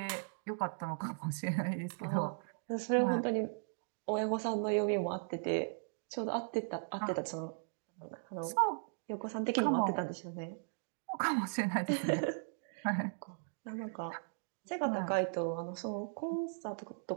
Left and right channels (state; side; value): silent; left; digital silence